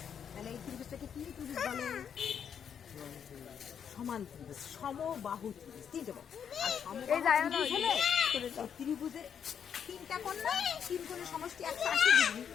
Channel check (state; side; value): quieter; right; 7.9 dB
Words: তাহলে এই ত্রিভুজটাকে কি ত্রিভুজ বলে? সমান ত্রিভুজ, সমবাহু ত্রিভুজ। তিনটে বাহু আর সমবাহু ত্রিভুজ হলে ত্রিভুজের তিনটা কোণ না, তিন কোণের সমষ্টি 180 ডিগ্রি।